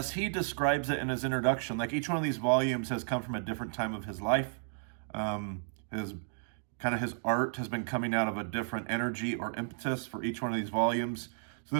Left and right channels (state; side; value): silent; left; digital silence